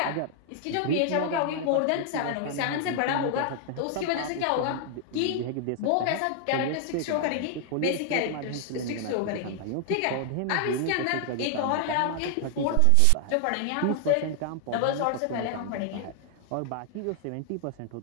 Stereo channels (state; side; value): different; both; correlation 0.00